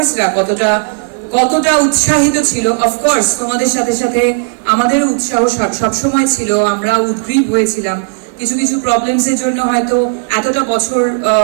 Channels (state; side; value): silent; left; digital silence